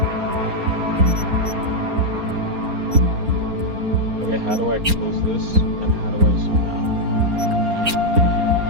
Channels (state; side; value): late; left; 4.3 ms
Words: Okay, how do I close this? And how do I zoom out?